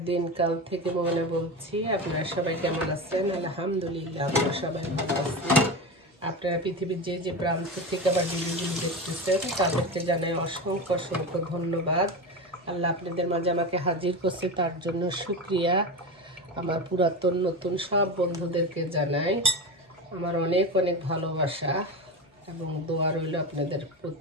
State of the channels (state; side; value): normal; both; correlation 0.22